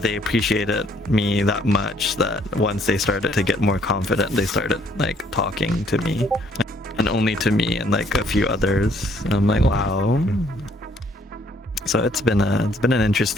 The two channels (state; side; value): normal; both; correlation 0.64